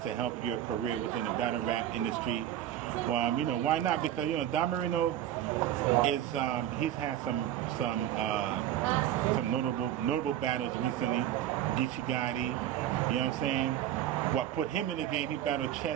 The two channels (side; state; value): left; quieter; 11.7 dB